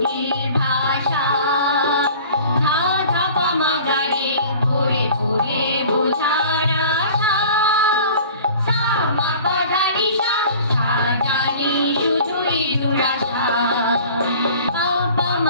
ভাষা ধা ধা পামাগারে পড়ে পড়ে বোঝার আশা সা মা পা ধা নি সা জানি শুধুই দুরাশা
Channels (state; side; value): inverted; both; correlation -0.45